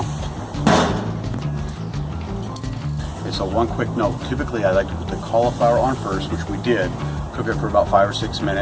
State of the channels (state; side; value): identical; both; correlation 1.00